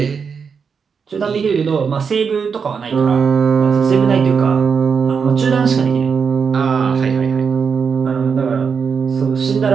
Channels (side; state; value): left; quieter; 6.0 dB